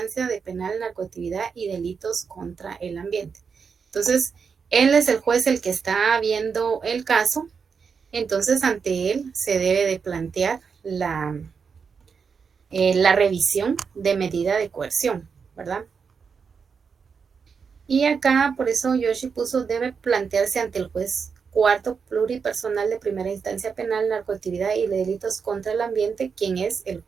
de penal, narcoactividad y delitos contra el ambiente. Entonces, él es el juez el que está viendo el caso. Entonces, ante él se debe de plantear la revisión de medida de coerción, ¿verdad? Y acá, por eso Yoshi puso, debe plantearse ante el juez cuarto pluripersonal de primera instancia penal, narcoactividad y delitos contra el ambiente, quien es el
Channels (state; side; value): quieter; left; 5.9 dB